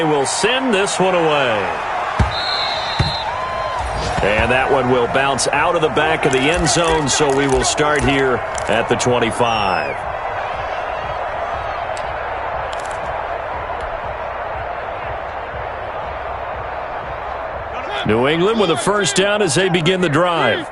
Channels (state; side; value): identical; both; correlation 1.00